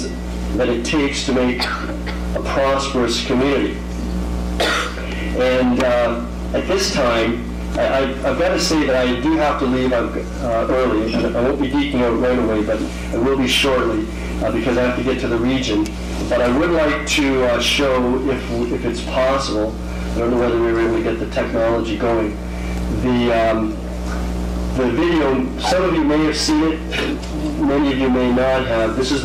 that it takes to make a prosperous community. And at this time, I've got to say that I do have to leave early, and I won't be geeking out right away, but I will be shortly because I have to get to the region. But I would like to show, if it's possible, I don't know whether we were able to get the technology going, the video. Some of you may have seen it, many of you may not have. This is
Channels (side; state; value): both; identical; correlation 1.00